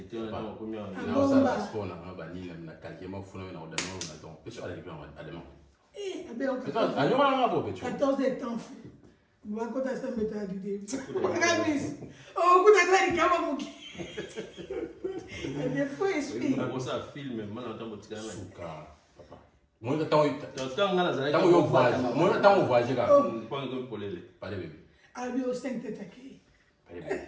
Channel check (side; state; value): both; identical; correlation 1.00